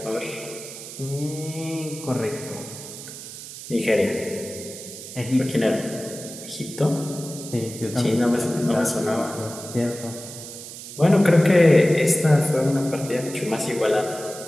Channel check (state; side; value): noise; right; hiss, 12 dB below the sound